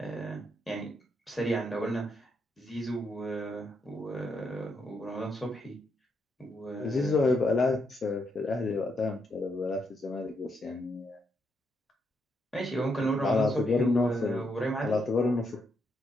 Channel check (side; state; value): both; normal; correlation 0.78